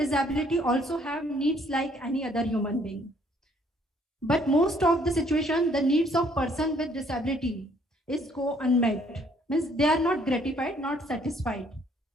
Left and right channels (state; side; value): normal; both; correlation 0.63